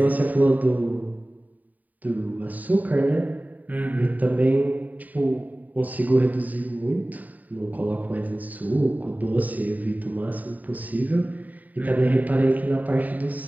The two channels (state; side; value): late; left; 0.078 ms